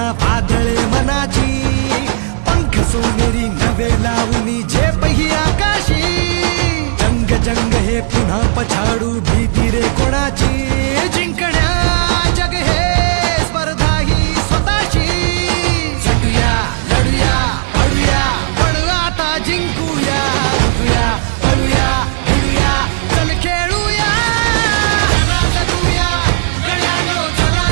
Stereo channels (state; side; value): silent; left; digital silence